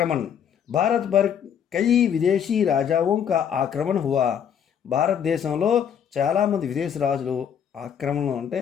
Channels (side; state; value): right; quieter; 8.3 dB